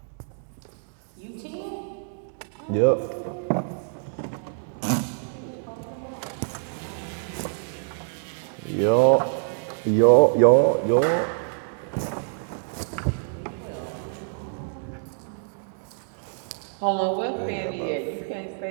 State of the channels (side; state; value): left; silent; digital silence